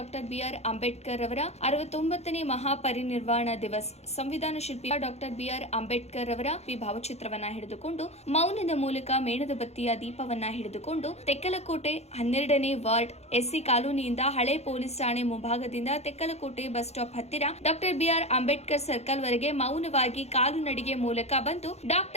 B R Ambedkar ಅವರ 69ನೇ ಮಹಾಪರಿನಿರ್ವಾಣ ದಿವಸ್ ಸಂವಿಧಾನ ಶಿಲ್ಪಿ ಡಾಕ್ಟರ್ ಬಿಆರ್ ಅಂಬೇಡ್ಕರ್ ಅವರ ಭಾವಚಿತ್ರವನ್ನ ಹಿಡಿದುಕೊಂಡು ಮೌನದ ಮೂಲಕ ಮೇಣದ ಬತ್ತಿಯ ದೀಪವನ್ನ ಹಿಡಿದುಕೊಂಡು ತೆಕ್ಕಲಕೋಟೆ 12ನೇ ವಾರ್ಡ್ ಎಸ್ಸಿ ಕಾಲೋನಿಯಿಂದ ಹಳೆ ಪೊಲೀಸ್ ಠಾಣೆ ಮುಂಭಾಗದಿಂದ ತೆಕ್ಕಲಕೋಟೆ ಬಸ್ ಸ್ಟಾಪ್ ಹತ್ತಿರ ಡಾಕ್ಟರ್ ಬಿಆರ್ ಅಂಬೇಡ್ಕರ್ ಸರ್ಕಲ್ ವರೆಗೆ ಮೌನವಾಗಿ ಕಾಲು ನಡಿಗೆ ಮೂಲಕ ಬಂದು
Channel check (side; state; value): right; late; 0.31 ms